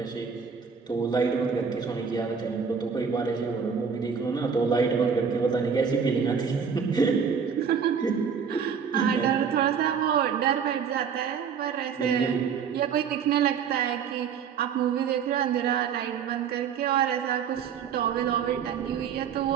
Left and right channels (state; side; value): quieter; left; 6.6 dB